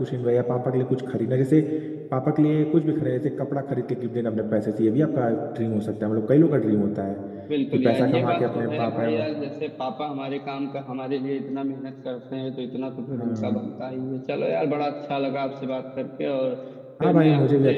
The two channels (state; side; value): identical; both; correlation 1.00